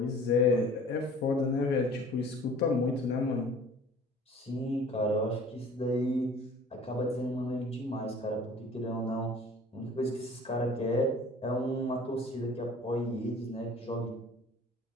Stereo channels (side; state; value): both; normal; correlation 0.48